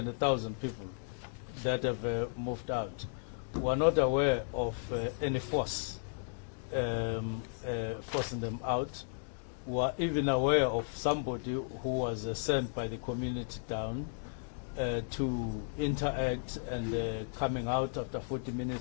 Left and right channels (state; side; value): silent; right; digital silence